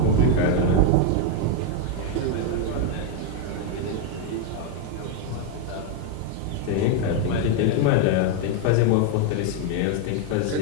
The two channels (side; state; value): both; different; correlation 0.01